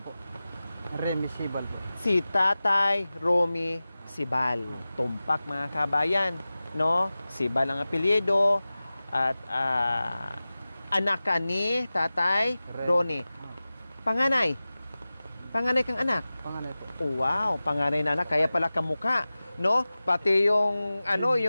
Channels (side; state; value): both; inverted; correlation -0.97